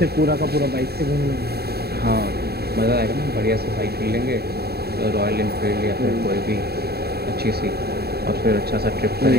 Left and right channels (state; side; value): late; left; 0.46 ms